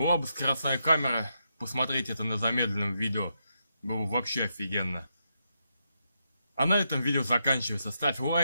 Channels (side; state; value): both; inverted; correlation -0.82